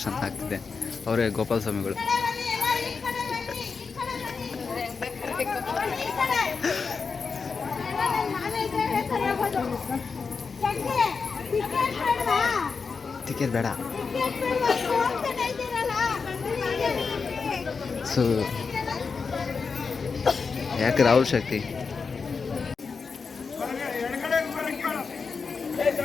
ಆಗ್ತಿದೆ. ಅವರೇ ಗೋಪಾಲ ಸ್ವಾಮಿಗಳು. ಟಿಕೆಟ್ ಬೇಡ. ಸೊ ಯಾಕೆ ರಾಹುಲ್ ಶಕ್ತಿ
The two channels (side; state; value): right; quieter; 5.1 dB